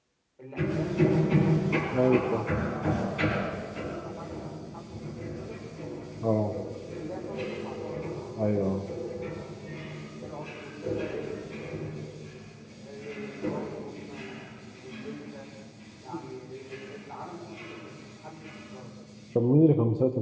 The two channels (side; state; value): both; identical; correlation 1.00